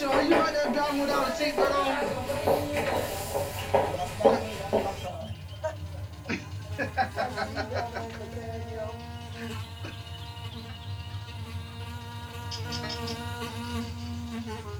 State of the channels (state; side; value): identical; both; correlation 1.00